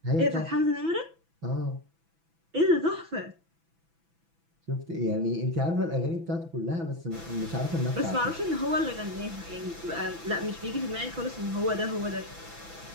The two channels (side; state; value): left; late; 6.0 ms